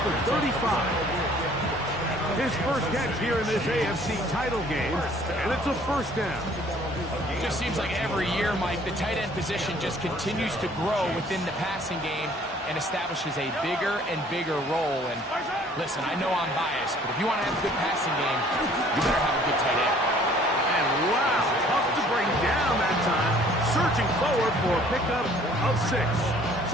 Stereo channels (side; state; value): both; normal; correlation 0.56